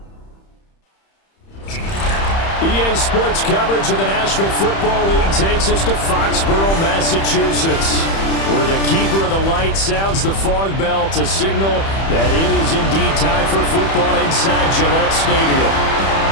EA Sports coverage of the National Football League takes us to Foxborough, Massachusetts, where the keeper of the light sounds the fog bell to signal that it is indeed time for football inside Gillette Stadium.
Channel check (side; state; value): right; late; 31 ms